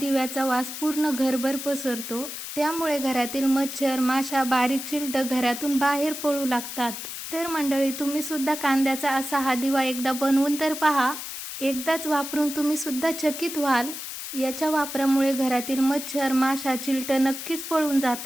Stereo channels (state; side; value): noise; left; hiss, 8 dB below the sound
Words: वास पूर्ण घरभर पसरतो. त्यामुळे घरातील मच्छर, माशा, बारीक चिलटं घरातून बाहेर पळू लागतात. तर मंडळी, तुम्ही सुद्धा कांद्याचा असा हा दिवा एकदा बनवून तर पहा. एकदाच वापरून तुम्ही सुद्धा चकित व्हाल. याच्या वापरामुळे घरातील मच्छर, माशा, चिलटं नक्कीच पळून